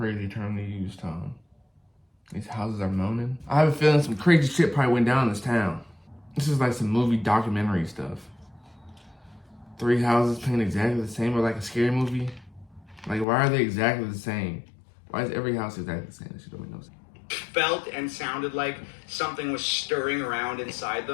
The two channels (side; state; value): right; drops out; at 13.2 s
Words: term to use, Tom. These houses are moaning. I have a feeling some crazy shit probably went down in this town. This is like some movie documentary stuff. 3 houses painted exactly the same, or like a scary movie. Like, why are they exactly the same? Why is every house exactly the same? That shit don't make no sense. Felt and sounded like something was stirring around inside